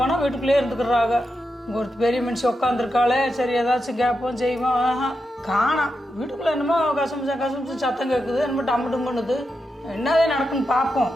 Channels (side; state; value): both; normal; correlation 0.87